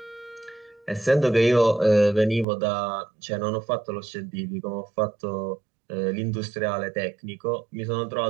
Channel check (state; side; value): drops out; left; at 2.5 s